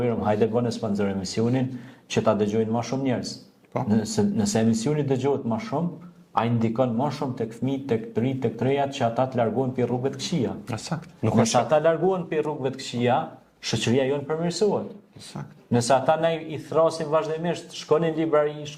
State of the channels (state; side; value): identical; both; correlation 1.00